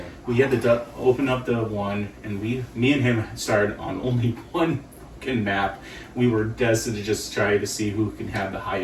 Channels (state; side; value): identical; both; correlation 1.00